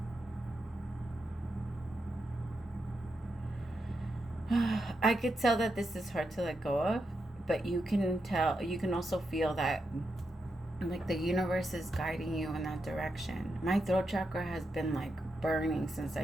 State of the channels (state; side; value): normal; both; correlation 0.85